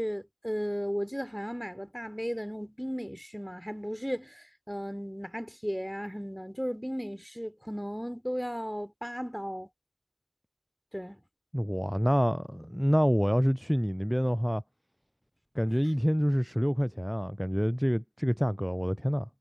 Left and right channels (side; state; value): both; identical; correlation 1.00